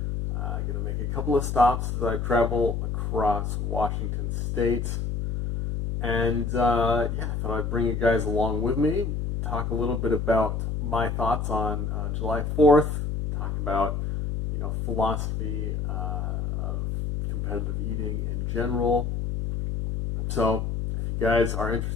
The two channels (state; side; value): noise; left; hum, 1 dB below the sound